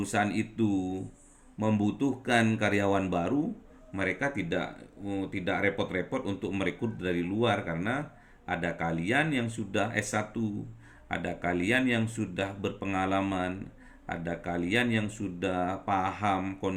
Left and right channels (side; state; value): both; identical; correlation 1.00